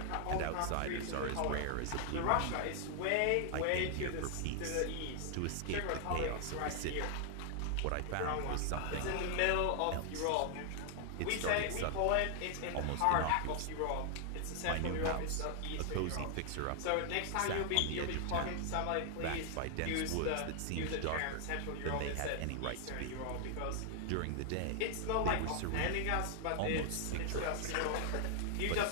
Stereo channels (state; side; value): different; both; correlation 0.00